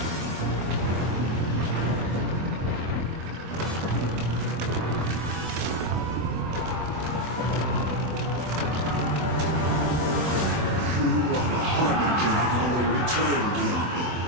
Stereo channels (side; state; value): left; late; 24 ms